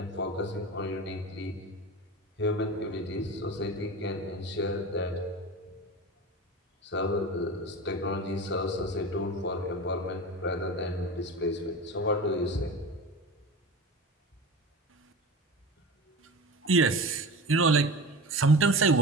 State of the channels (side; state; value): both; normal; correlation 0.30